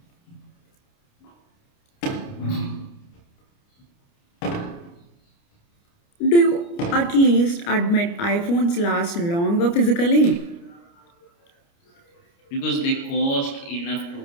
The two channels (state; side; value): late; right; 29 ms